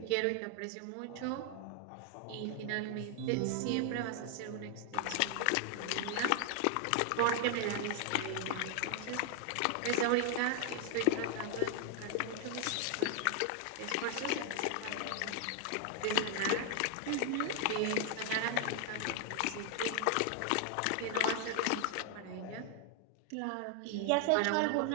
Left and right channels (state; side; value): different; both; correlation 0.00